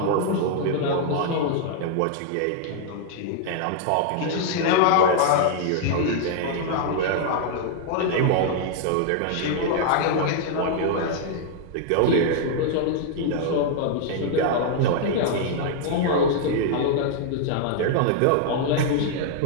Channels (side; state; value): both; different; correlation -0.01